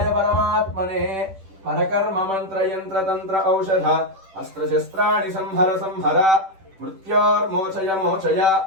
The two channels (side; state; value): left; late; 10 ms